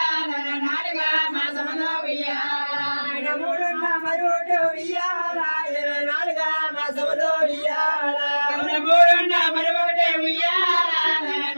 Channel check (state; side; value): inverted; both; correlation -1.00